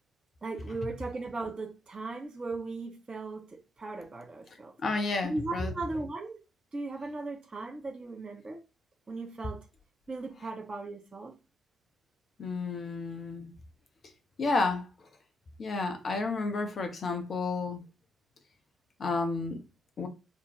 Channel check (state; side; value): normal; both; correlation 0.79